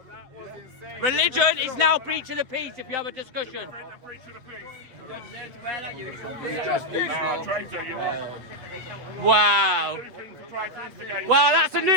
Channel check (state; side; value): late; left; 8.1 ms